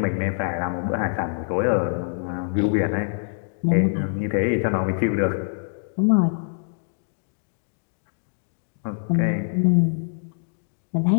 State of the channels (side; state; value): right; silent; digital silence